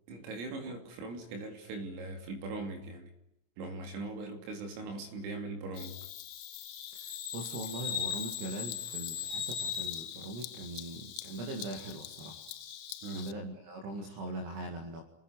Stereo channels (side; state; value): left; late; 25 ms